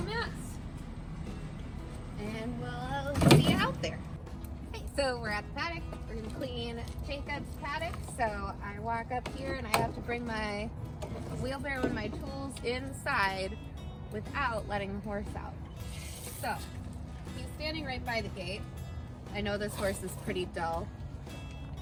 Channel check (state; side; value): identical; both; correlation 1.00